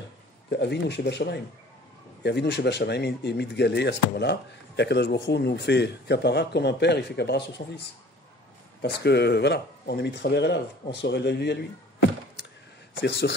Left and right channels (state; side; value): normal; both; correlation 0.49